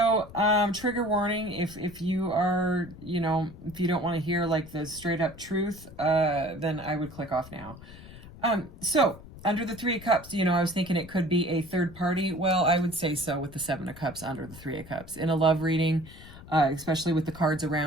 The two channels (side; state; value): left; noise; rumble, 17 dB below the sound